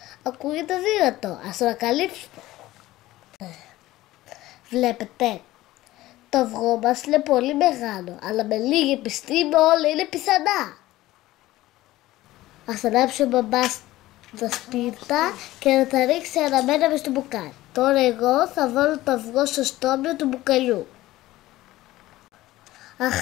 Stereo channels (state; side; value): quieter; right; 16.7 dB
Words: Ακούγεται δύνατο, ας το ανακαλύψουμε. Βλέπετε, το αυγό μας είναι πολύ μεγάλο, αλλά με λίγη επιστήμη όλα είναι πιθανά. Ας ανάψει ο μπαμπάς τα σπίρτα και να τα ρίξει αναμένα μες στο μπουκάλι. Τώρα εγώ θα βάλω το αυγό στο στόμιο του μπουκαλιού.